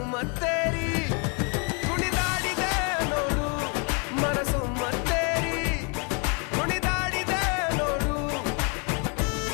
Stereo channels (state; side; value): quieter; right; 35.3 dB